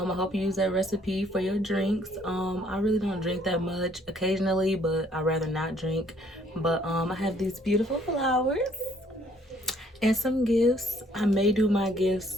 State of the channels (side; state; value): both; normal; correlation 0.63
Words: you use that recipe for your drinks. I really don't drink that much occasionally, but I'd rather not drink. But I have these beautiful flowers and some gifts. I may do my